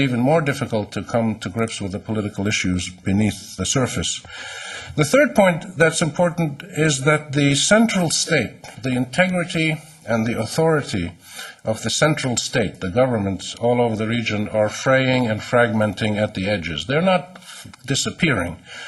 more difficult to come to grips with the political issues beneath the surface. The third point that's important is that the central state, the integrity and the authority of the central state, the governments all over the region, are fraying and fragmenting at the edges. They're not disappearing.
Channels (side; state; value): both; identical; correlation 1.00